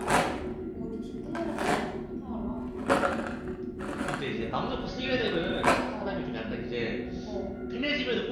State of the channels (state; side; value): identical; both; correlation 1.00